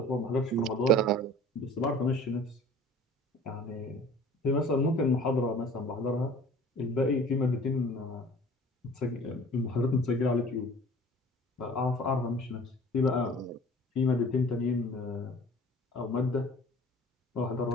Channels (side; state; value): both; normal; correlation 0.46